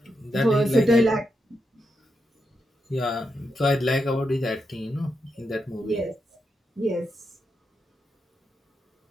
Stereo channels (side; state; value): both; normal; correlation 0.84